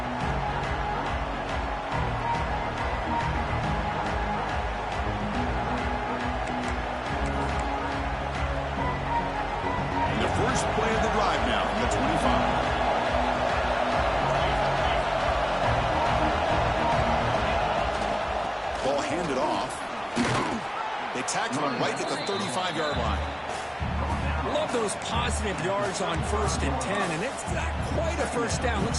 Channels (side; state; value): both; identical; correlation 1.00